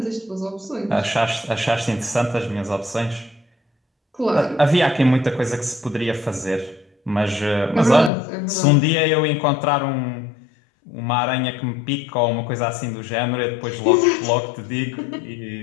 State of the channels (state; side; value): drops out; right; at 8.1 s